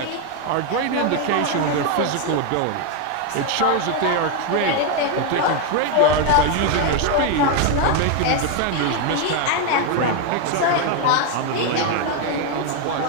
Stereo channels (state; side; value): different; both; correlation 0.01